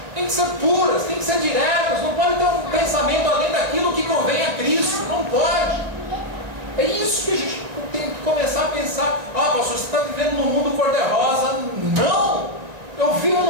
têm que ser puras, têm que ser diretas. Não pode ter um pensamento além daquilo que convém a Cristo, não pode. É isso que a gente tem que começar a pensar. Ah, pastor, você está vivendo num mundo cor-de-rosa. Não! Eu vivo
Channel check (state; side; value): late; left; 1.9 ms